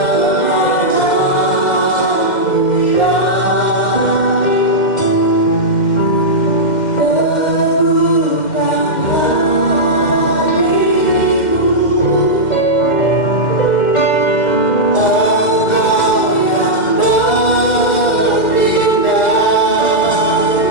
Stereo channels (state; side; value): late; right; 2.1 ms